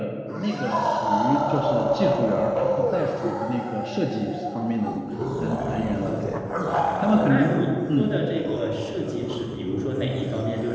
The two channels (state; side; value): identical; both; correlation 1.00